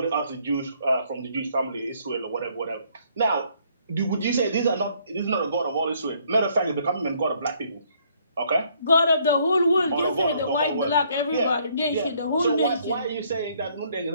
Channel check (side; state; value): both; inverted; correlation -0.66